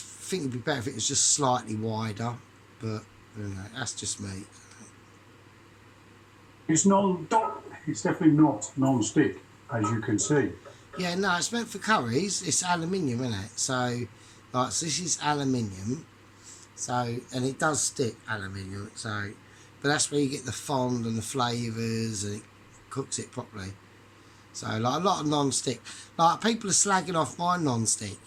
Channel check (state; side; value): identical; both; correlation 1.00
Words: think it'd be better if it was just slightly wider, but you know, that's just me. It's definitely not non-stick, as you can see. Yeah, no, it's meant for curries. It's aluminium, isn't it? So this is aluminium. So, and it does stick, aluminium. So, but that's where you get the fond and the flavours, and it cooks it properly. So, like a lot of non-stick. Like people are slagging off my non-stick.